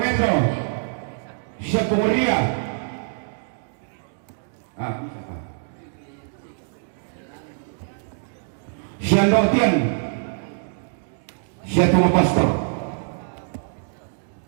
siapa Moria. Siya Nortian, siya tunggu pastor.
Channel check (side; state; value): left; silent; digital silence